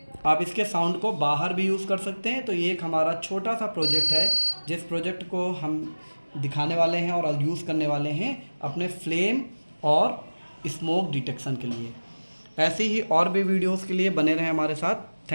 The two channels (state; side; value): inverted; both; correlation -1.00